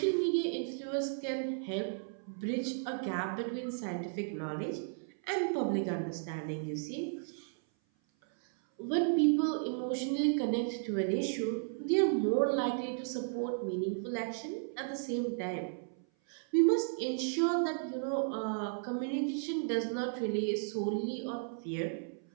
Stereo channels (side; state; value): left; silent; 55 dB below the other